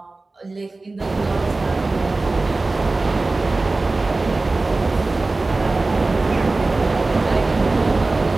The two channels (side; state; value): left; quieter; 3.3 dB